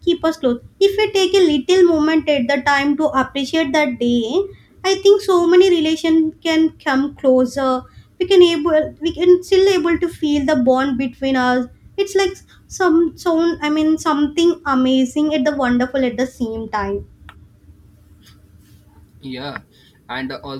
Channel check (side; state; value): both; identical; correlation 1.00